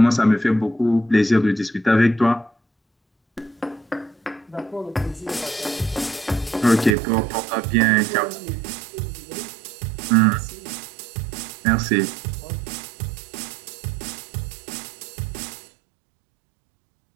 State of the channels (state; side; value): drops out; left; at 7.0 s